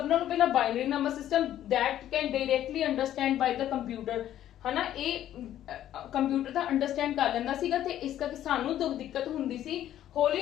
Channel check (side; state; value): right; quieter; 11.9 dB